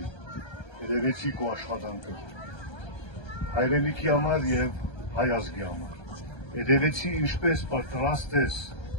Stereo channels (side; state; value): right; late; 1.3 ms